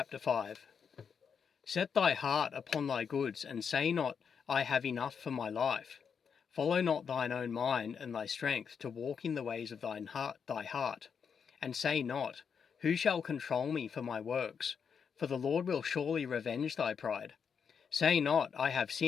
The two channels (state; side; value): quieter; right; 6.7 dB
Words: 5. Set thy heart upon thy goods, and say not, I have enough for my life. Follow not thine own mind and thy strength to walk in the ways of thy heart, and say not, who shall control me for my works? For the Lord will surely revenge thy pride. Say not, I have